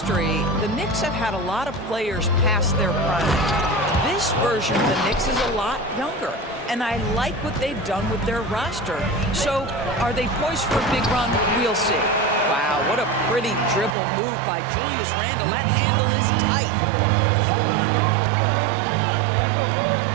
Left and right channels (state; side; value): drops out; left; at 14.0 s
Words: the Knicks have had a lot of players past their prime. This version of the Knicks is a lot younger, and I like what they've done with their roster. So, are they poised for a big run? We'll see. Wow, what a pretty dribble move by Julius Randle. That handle is tight.